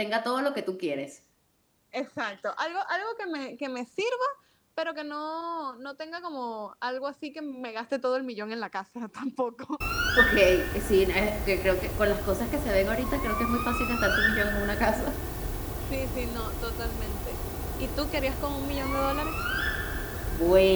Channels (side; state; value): both; identical; correlation 1.00